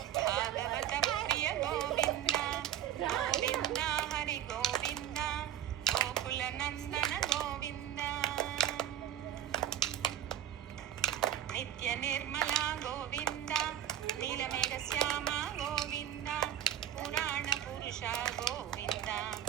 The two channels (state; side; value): quieter; left; 11.0 dB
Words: భాగవత ప్రియ గోవింద గోవింద హరి గోవింద గోకుల నందన గోవింద నిత్య నిర్మల గోవింద నీలమేఘ శ్యామ గోవింద పురాణ పురుష గోవింద